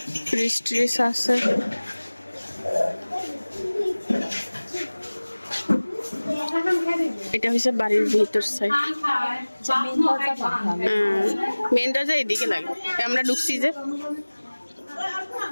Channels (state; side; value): inverted; both; correlation -1.00